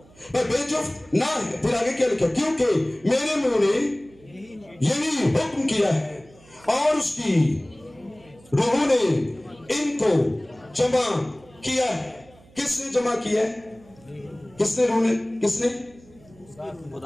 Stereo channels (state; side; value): noise; right; hum, 26 dB below the sound